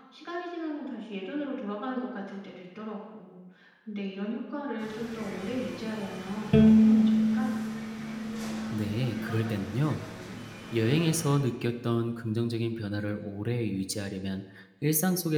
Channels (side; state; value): both; identical; correlation 1.00